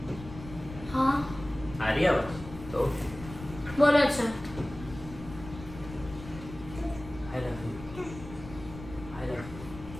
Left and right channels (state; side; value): noise; left; rumble, 13 dB below the sound